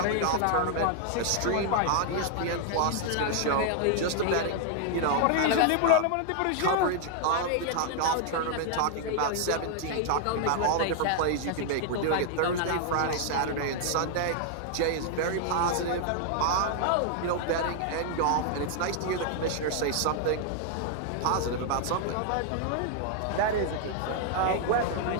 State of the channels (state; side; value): different; both; correlation 0.00